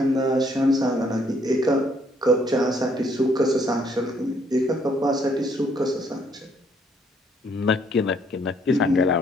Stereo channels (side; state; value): both; normal; correlation 0.67